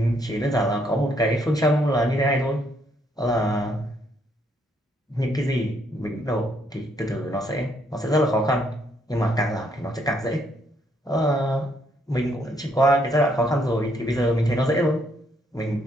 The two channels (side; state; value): both; normal; correlation 0.71